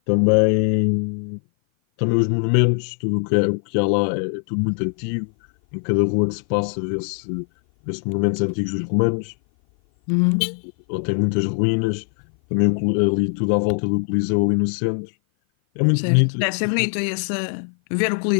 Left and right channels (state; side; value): silent; right; 56 dB below the other